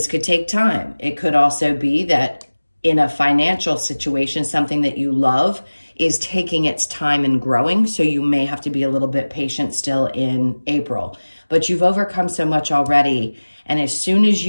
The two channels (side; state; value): both; inverted; correlation -1.00